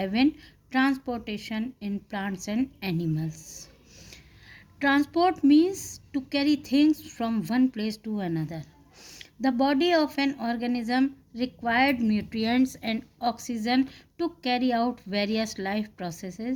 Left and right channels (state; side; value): identical; both; correlation 1.00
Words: Transportation in Plants and Animals. Transport means to carry things from one place to another. The body of an organism required nutrients and oxygen to carry out various life